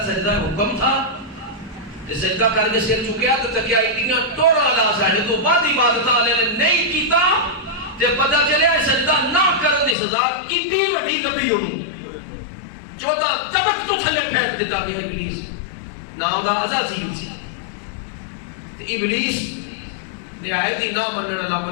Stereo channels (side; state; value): right; drops out; at 10.0 s